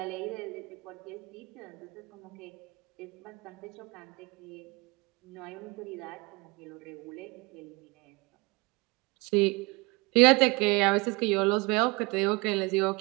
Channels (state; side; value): quieter; left; 26.4 dB